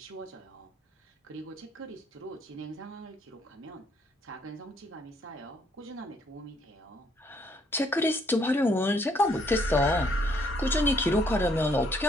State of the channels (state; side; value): normal; both; correlation 0.67